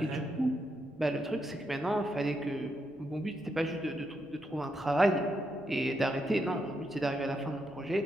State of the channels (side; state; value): left; noise; rumble, 29 dB below the sound